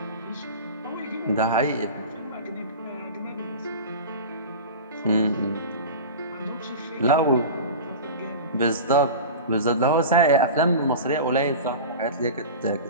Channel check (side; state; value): both; inverted; correlation -0.31